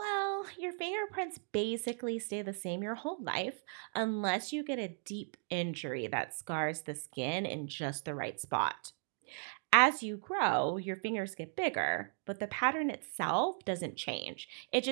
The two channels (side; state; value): left; silent; 54 dB below the other